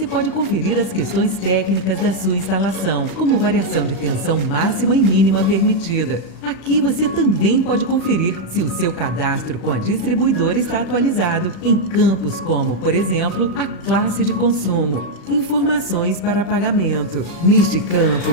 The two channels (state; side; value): late; right; 35 ms